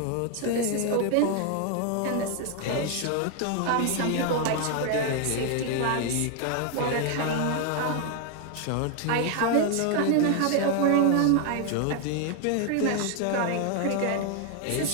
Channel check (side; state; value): both; different; correlation 0.00